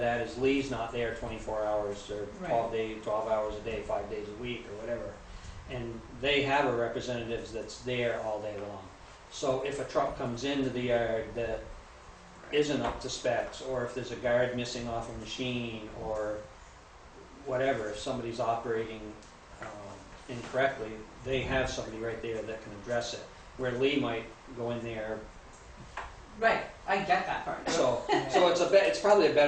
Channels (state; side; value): identical; both; correlation 1.00